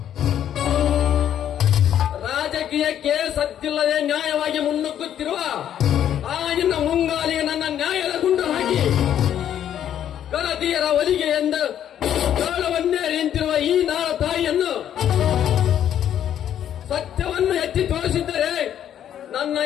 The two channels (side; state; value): right; quieter; 10.2 dB